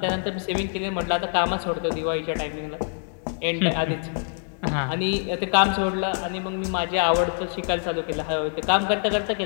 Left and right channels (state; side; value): silent; right; 62 dB below the other